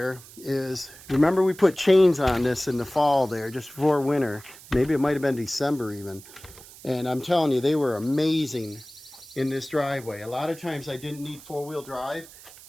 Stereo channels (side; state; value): right; noise; hiss, 19 dB below the sound